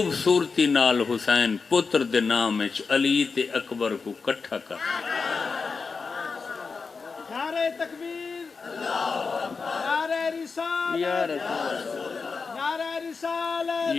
نال حسین پتر دے نام وچ علی تے اکبر کو کٹھا کر نعرہ تکبیر نعرہ رسالت نعرہ رسالت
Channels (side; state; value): right; quieter; 4.8 dB